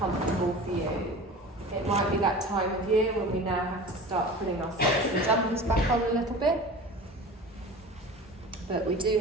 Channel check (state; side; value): normal; both; correlation 0.37